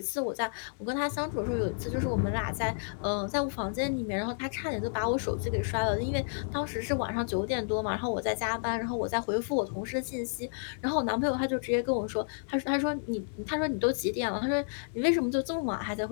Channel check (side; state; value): right; silent; digital silence